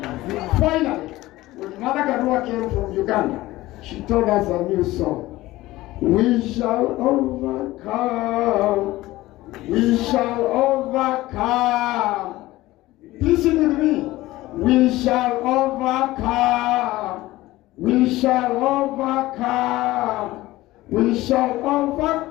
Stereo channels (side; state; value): right; quieter; 17.7 dB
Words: Finally, when Martha Karua came from Uganda, she told us a new song. We shall overcome. We shall overcome. Please sing with me. We shall overcome. We shall overcome. We shall